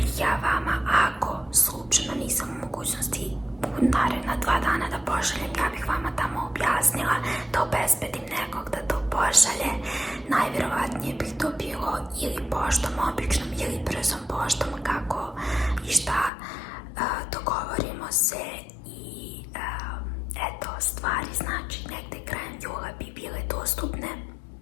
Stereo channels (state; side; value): drops out; right; at 16.3 s